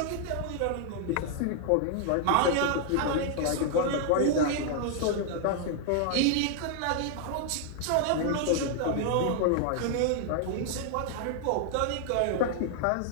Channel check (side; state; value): both; different; correlation 0.00